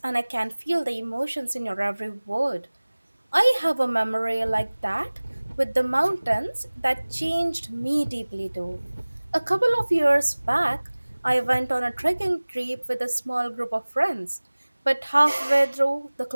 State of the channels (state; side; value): inverted; both; correlation -1.00